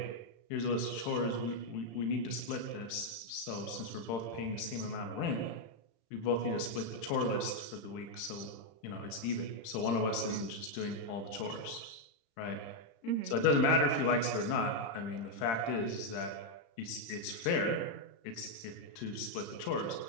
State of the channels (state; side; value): late; right; 35 ms